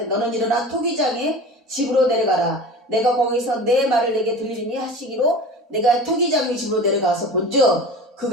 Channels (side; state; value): both; normal; correlation 0.36